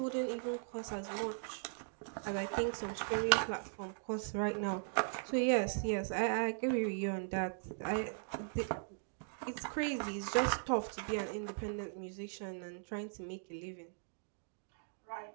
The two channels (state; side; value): silent; left; digital silence